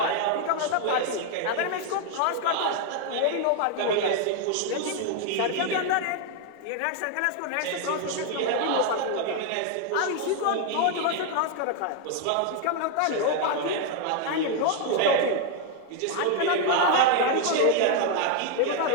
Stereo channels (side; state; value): both; different; correlation 0.00